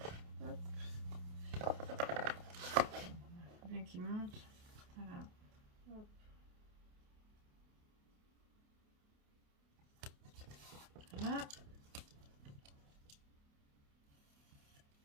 Hop. Faut bien qu'il monte. Voilà. Hop. Voilà.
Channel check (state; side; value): late; left; 28 ms